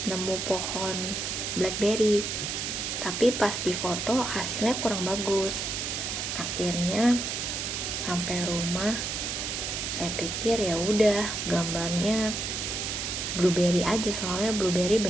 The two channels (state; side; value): noise; right; hiss, 3 dB below the sound